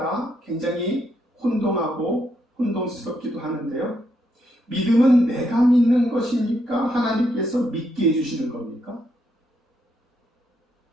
굉장히 혼동하고 혼동스럽기도 하는데요. 믿음은 내가 믿는 것입니까? 하나님께서 믿게 해주시는 겁니까?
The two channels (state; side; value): normal; both; correlation 0.77